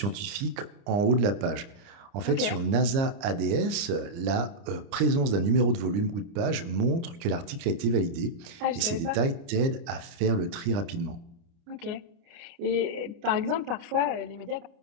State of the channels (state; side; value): late; left; 30 ms